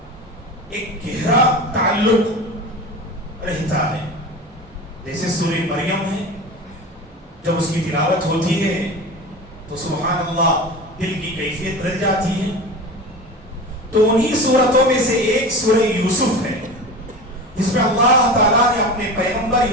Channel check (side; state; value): both; normal; correlation 0.31